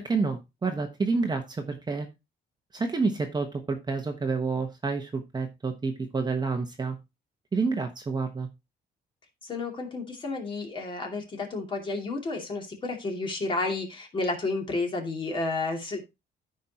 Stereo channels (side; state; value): both; normal; correlation 0.68